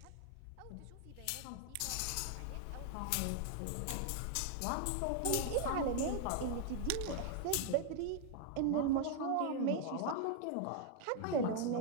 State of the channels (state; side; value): different; both; correlation 0.00